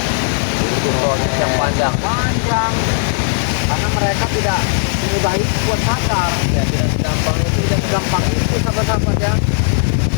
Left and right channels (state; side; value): silent; right; 67 dB below the other